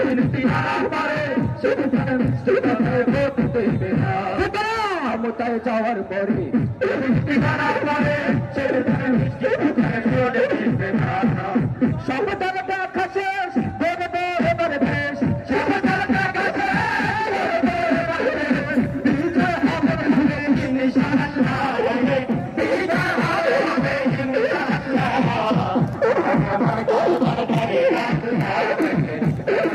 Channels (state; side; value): identical; both; correlation 1.00